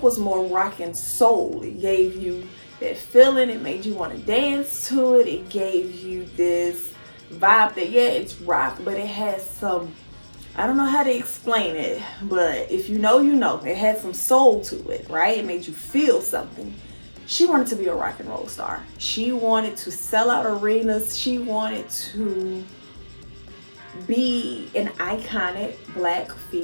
was more rock and soul. It gave you that feeling, it made you want to dance to it. It gave you this vibe that, yeah, it's rock, but it has some, I don't know how to explain it, but if you know, you know. It had some soul to it, right? It made you feel something. She wanted to be a rock and roll star. She wanted to sell out arenas. She wanted to be an iconic black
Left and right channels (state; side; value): inverted; both; correlation -1.00